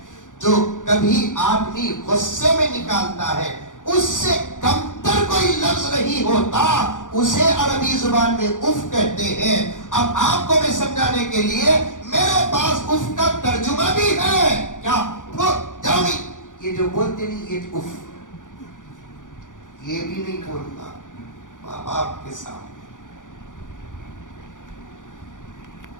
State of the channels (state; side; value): late; right; 0.87 ms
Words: जो कभी आदमी गुस्से में निकालता है उससे कमतर कोई लफ्ज नहीं होता उसे अरबी जुबान में उफ कहते हैं अब आपको मैं समझाने के लिए मेरे पास उफ का तर्जुमा भी है क्या जाओगी ये जो बोलते नहीं ये उफ ये भी नहीं बोलता माँ बाप के सामने